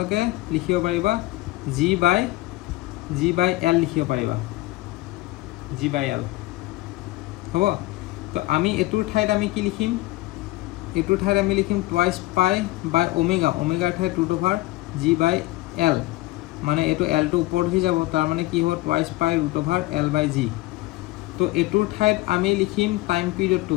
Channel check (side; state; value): right; quieter; 19.0 dB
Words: লিখিব পাৰিবা G/L লিখিব পাৰিবা, G/L হ'ব। তো আমি এইটোৰ ঠাইত আমি কি লিখিম? এইটোৰ ঠাইত আমি লিখিম 2π ওমেগা, ওমেগাৰ ঠাইত √G/L। মানে এইটো এলটো ওপৰত উঠি যাব, তাৰ মানে কি হ'ব 2π√L/G। তো এইটোৰ ঠাইত আমি লিখিম টাইম পিৰিয়ডটো,